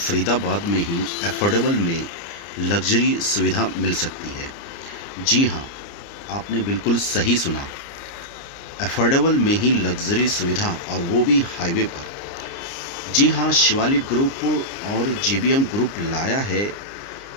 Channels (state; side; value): late; right; 29 ms